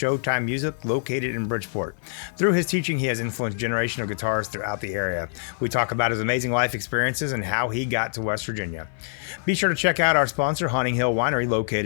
Music, located in Bridgeport. Through his teaching, he has influenced a generation of guitarists throughout the area. We talk about his amazing life experiences and how he got to West Virginia. Be sure to check out our sponsor, Haunting Hill Winery,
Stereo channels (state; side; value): silent; right; 56 dB below the other